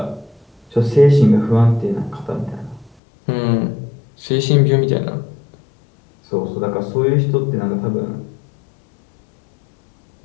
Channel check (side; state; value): right; drops out; at 3.0 s